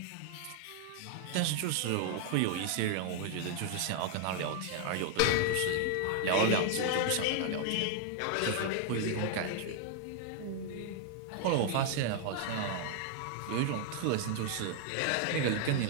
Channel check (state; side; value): different; both; correlation 0.00